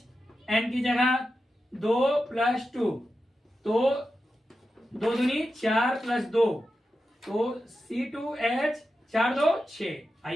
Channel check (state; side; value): normal; both; correlation 0.90